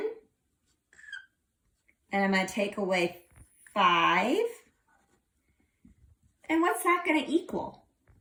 and I'm going to take away 5. And what's that going to equal?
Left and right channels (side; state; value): both; identical; correlation 1.00